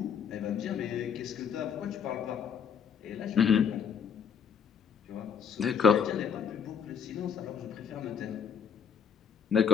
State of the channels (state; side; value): quieter; right; 7.2 dB